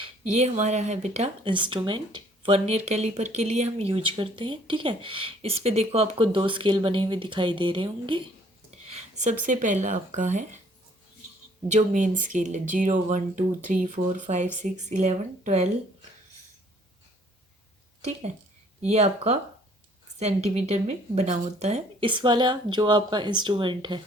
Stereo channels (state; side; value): normal; both; correlation 0.59